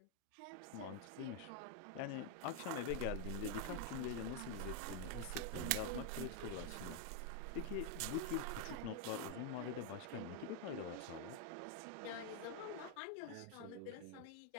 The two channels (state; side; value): different; both; correlation 0.00